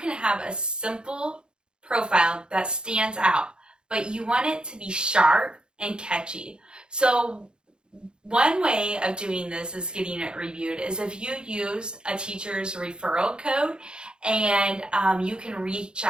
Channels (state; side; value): late; left; 0.049 ms